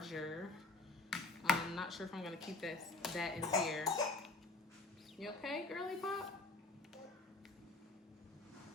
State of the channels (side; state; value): right; quieter; 3.5 dB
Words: I'm not sure if I'm gonna keep that in here. You okay, girly pop?